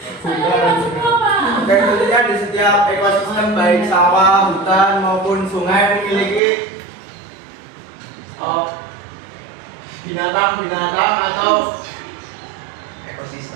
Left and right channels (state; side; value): drops out; left; at 6.4 s